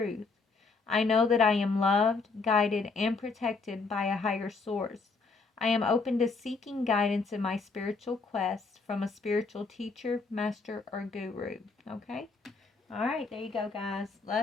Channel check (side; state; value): right; quieter; 4.2 dB